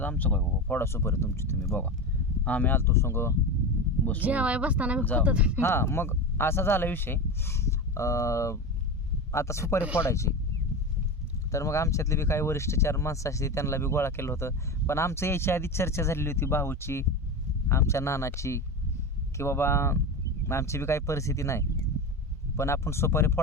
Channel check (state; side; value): normal; both; correlation 0.23